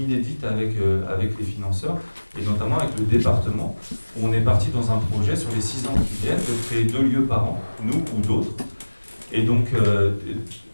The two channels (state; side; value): inverted; both; correlation -1.00